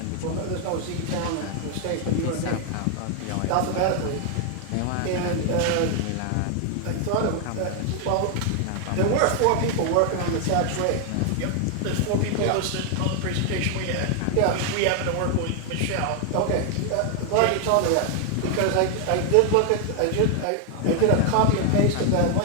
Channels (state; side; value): different; both; correlation 0.00